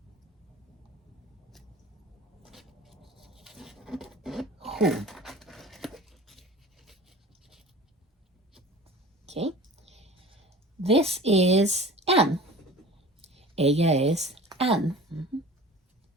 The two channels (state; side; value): normal; both; correlation 0.39